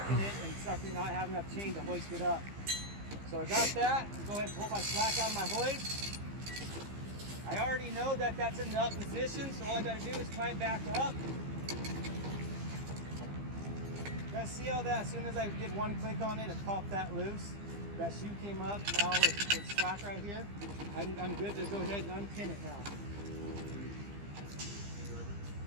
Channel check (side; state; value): left; late; 15 ms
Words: it and not have enough chain to hoist it up. So I got that. Go ahead and pull my slack out of my hoist. I already know that that's in the up position, so all I got to do is climb back up. You guys see how that, as soon as I did one click on it, it popped that loose. That shoe came up, now it's slack right here. I'm good to go ahead and unpin it now.